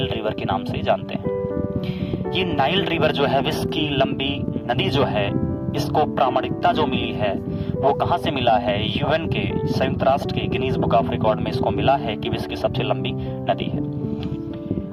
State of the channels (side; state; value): both; identical; correlation 1.00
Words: रिवर के नाम से जानते हैं। ये नाइल रिवर जो है विश्व की लंबी नदी जो है, इसको प्रामाणिकता जो मिली है वो कहाँ से मिला है। यूएन के संयुक्त राष्ट्र के गिनीज बुक ऑफ रिकॉर्ड में इसको मिला है कि विश्व की सबसे लंबी नदी है।